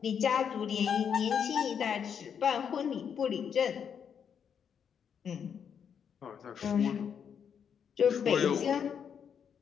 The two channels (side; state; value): right; quieter; 7.6 dB